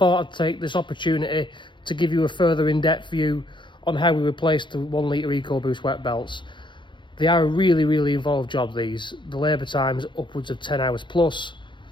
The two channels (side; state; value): right; late; 0.23 ms